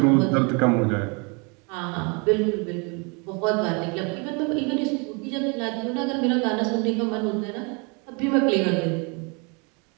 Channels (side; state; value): left; quieter; 32.3 dB